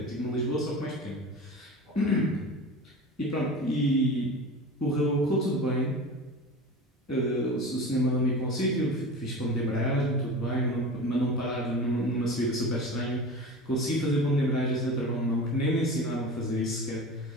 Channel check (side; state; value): both; normal; correlation 0.32